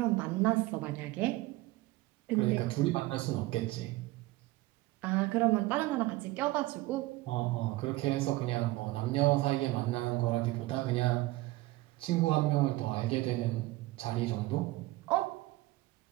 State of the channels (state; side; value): quieter; left; 18.9 dB